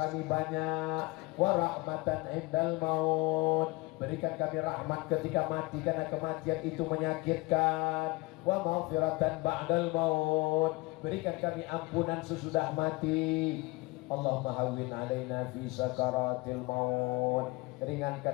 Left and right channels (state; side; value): quieter; right; 23.7 dB